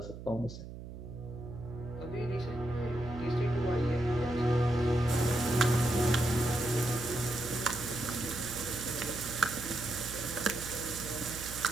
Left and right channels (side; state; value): right; noise; hum, 11 dB below the sound